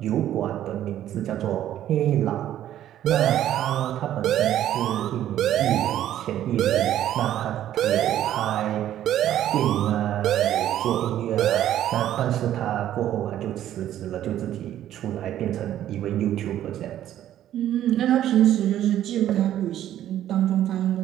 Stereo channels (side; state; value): left; quieter; 11.9 dB